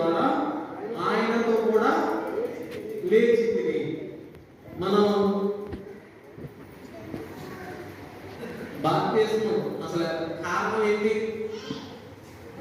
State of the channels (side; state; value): both; identical; correlation 1.00